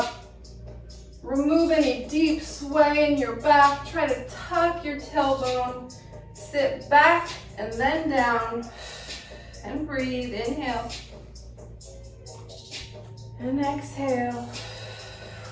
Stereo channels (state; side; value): identical; both; correlation 1.00